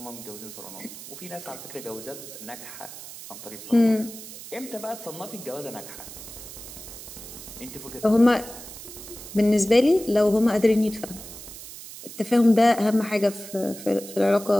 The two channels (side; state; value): right; noise; hiss, 13 dB below the sound